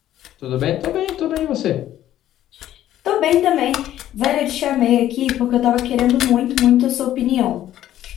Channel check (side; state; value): right; quieter; 12.5 dB